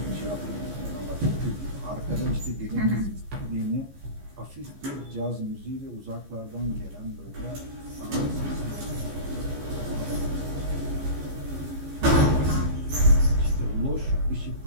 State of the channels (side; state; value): left; late; 15 ms